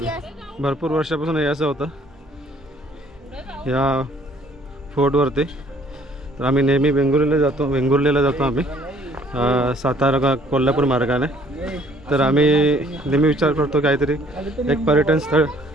भरपूर वर्षापासून हे असं होतं या फोर्टवरती. तर आम्ही नेहमी वेंगुर्लेला जातो आम्ही सातारा कोल्हापूर मार्गाने. तर आम्ही नेहमी विचार करतो काहीतरी एक पर्यटन स्थळ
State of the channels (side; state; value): both; normal; correlation 0.60